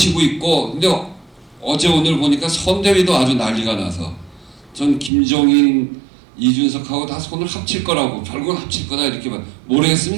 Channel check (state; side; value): drops out; left; at 5.1 s